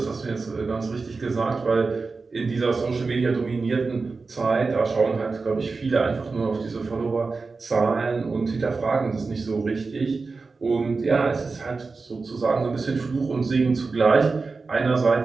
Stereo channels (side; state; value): left; quieter; 4.2 dB